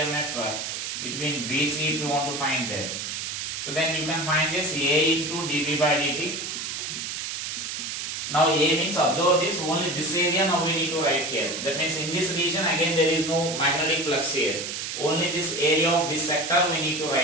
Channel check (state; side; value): noise; right; hiss, 5 dB below the sound